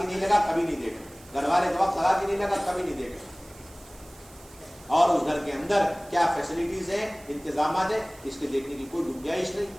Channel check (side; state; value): right; noise; hiss, 23 dB below the sound